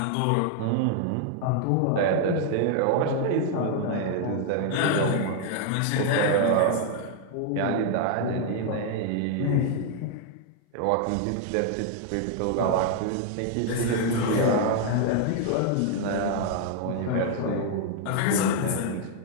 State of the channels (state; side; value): different; both; correlation 0.00